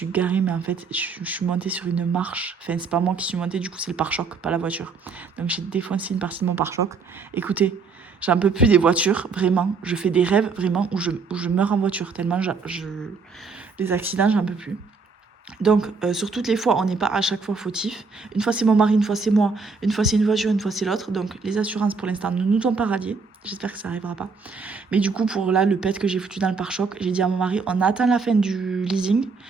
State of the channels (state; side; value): quieter; left; 4.8 dB